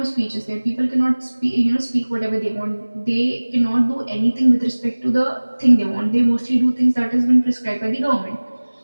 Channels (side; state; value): both; inverted; correlation -1.00